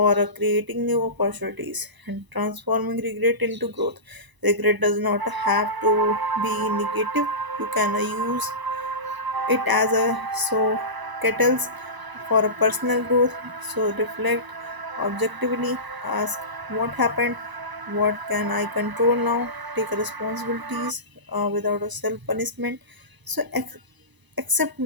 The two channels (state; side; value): late; left; 1.0 ms